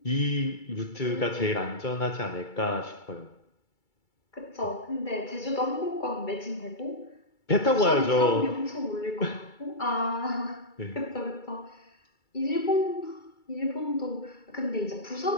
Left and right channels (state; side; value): late; right; 2.3 ms